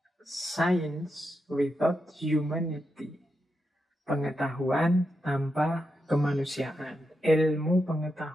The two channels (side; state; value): both; normal; correlation 0.86